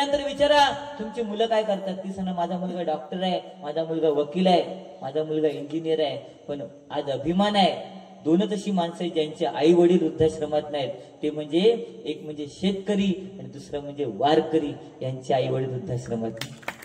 विचारा तुमची मुलं काय करतात. ती सांगा माझा मुलगा डॉक्टर आहे, माझा मुलगा वकील आहे, माझा मुलगा इंजिनियर आहे. पण आज अभिमान आहे 2च अशी माणसं आहेत ज्यांचे आई वडील वृद्धाश्रमात नाहीत. ते म्हणजे एक म्हणजे शेतकरी आणि दुसरं म्हणजे वारकरी. यांचे आई वडील वृद्धाश्रमात.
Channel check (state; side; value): identical; both; correlation 1.00